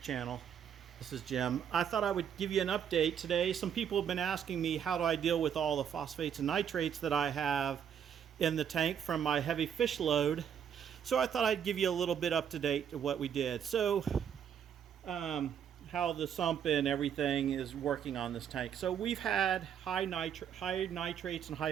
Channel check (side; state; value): left; quieter; 8.4 dB